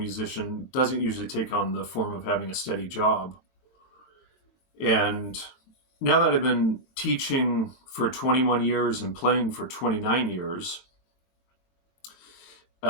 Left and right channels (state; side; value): late; right; 22 ms